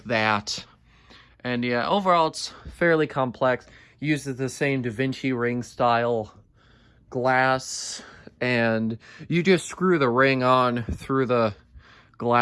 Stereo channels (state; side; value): identical; both; correlation 1.00